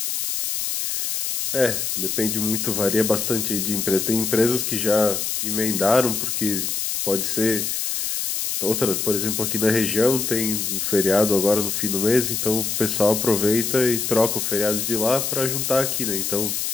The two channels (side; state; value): left; noise; hiss, 1 dB below the sound